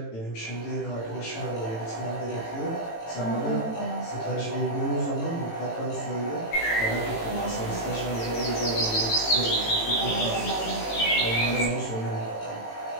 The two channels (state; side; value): late; right; 18 ms